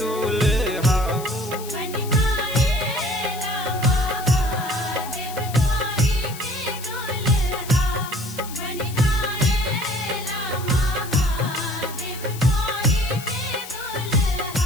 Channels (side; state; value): left; noise; hiss, 13 dB below the sound